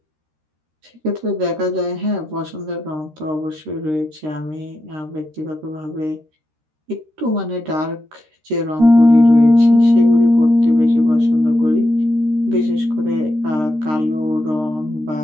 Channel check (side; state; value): left; late; 13 ms